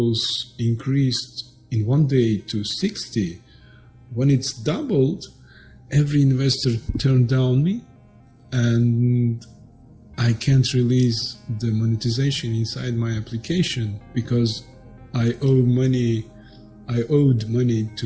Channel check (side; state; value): both; identical; correlation 1.00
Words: increased in one day to 60. When it's doubled, every investor turned down me, and I can't release the monetization inside my application because I owed money